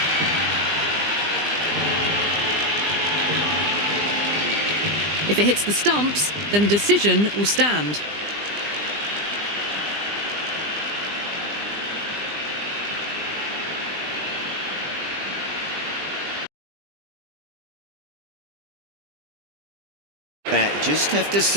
If it hits the stumps, then the decision will stand. Bat just have to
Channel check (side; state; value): left; late; 20 ms